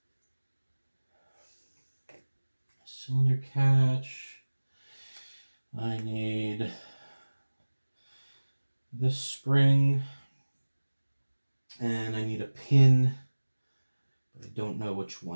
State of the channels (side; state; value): both; inverted; correlation -1.00